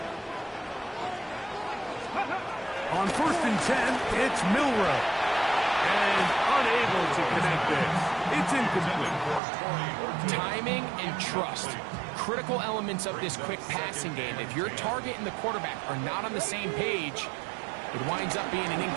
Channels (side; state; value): left; drops out; at 9.4 s